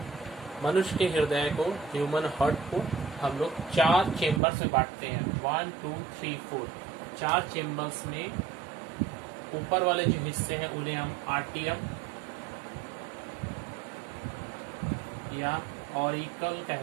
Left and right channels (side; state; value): left; drops out; at 4.4 s